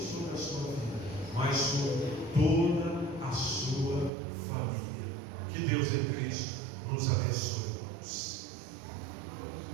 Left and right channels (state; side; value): drops out; left; at 4.1 s